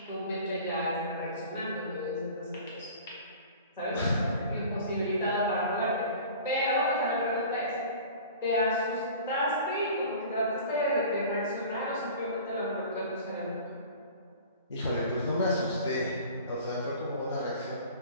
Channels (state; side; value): inverted; both; correlation -0.42